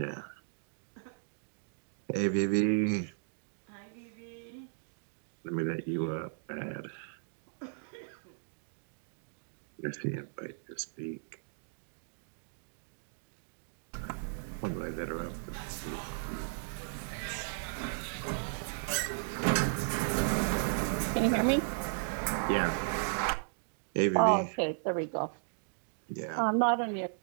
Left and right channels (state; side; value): silent; left; digital silence